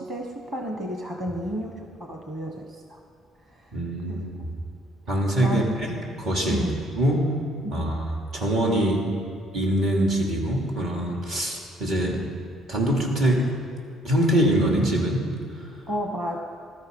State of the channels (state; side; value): normal; both; correlation 0.62